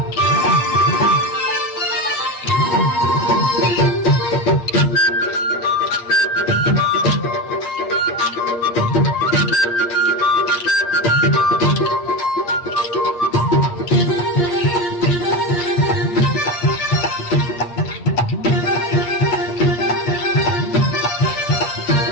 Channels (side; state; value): right; late; 8.4 ms